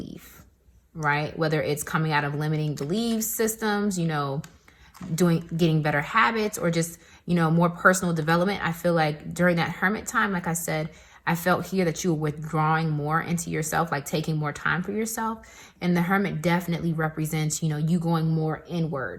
right? Whether it's coming out of limiting belief systems, you know, getting better habits, or just, you know, more personal development. I feel like during that hermit time, like I said, I felt here that you were withdrawing more into yourself, like taking more time for yourself. And the hermit definitely represents, you know, you going more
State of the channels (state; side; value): identical; both; correlation 1.00